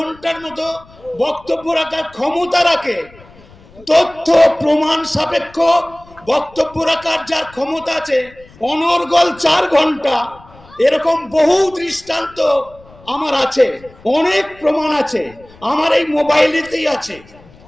মতো বক্তব্য রাখার ক্ষমতা রাখে, তথ্য প্রমাণ সাপেক্ষ বক্তব্য রাখার যার ক্ষমতা আছে অনর্গল 4 ঘন্টা, এরকম বহু দৃষ্টান্ত আমার আছে, অনেক প্রমাণ আছে, আমার এই মোবাইলেতেই আছে।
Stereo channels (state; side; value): noise; left; rumble, 24 dB below the sound